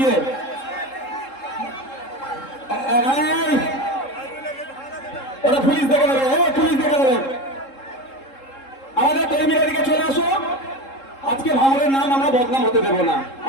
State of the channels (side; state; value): right; late; 3.7 ms